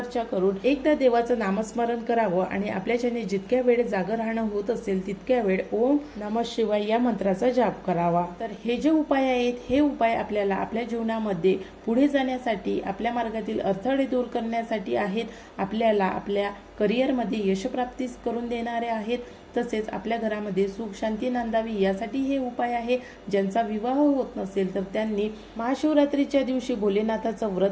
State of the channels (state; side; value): identical; both; correlation 1.00